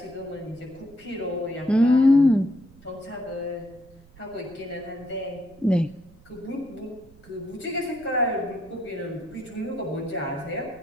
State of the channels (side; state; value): right; noise; rumble, 25 dB below the sound